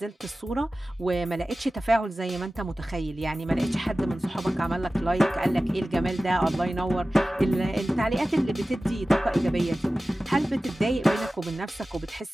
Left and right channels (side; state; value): both; normal; correlation 0.96